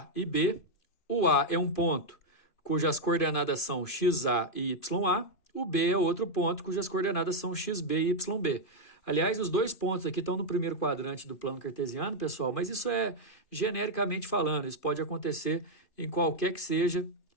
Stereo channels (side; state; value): right; late; 2.5 ms